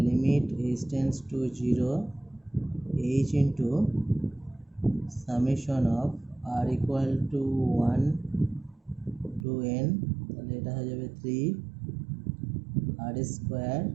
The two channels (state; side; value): drops out; left; at 9.5 s